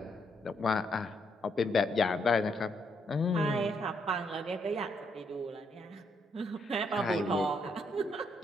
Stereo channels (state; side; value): normal; both; correlation 0.75